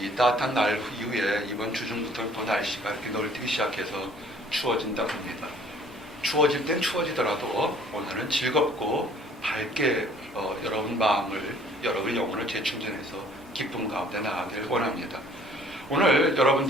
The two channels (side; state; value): both; normal; correlation 0.56